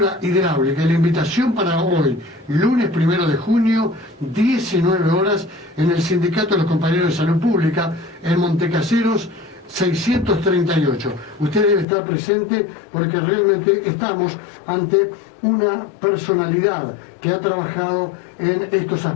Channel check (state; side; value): drops out; right; at 11.9 s